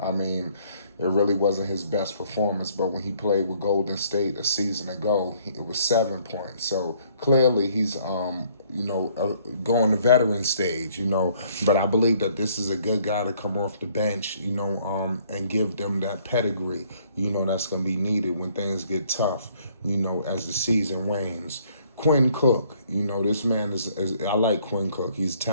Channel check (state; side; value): inverted; both; correlation -0.63